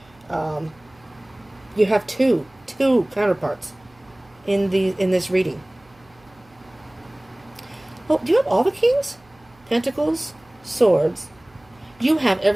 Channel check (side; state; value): right; noise; hum, 29 dB below the sound